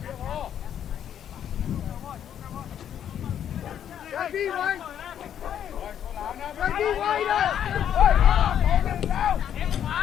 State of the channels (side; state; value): right; quieter; 9.6 dB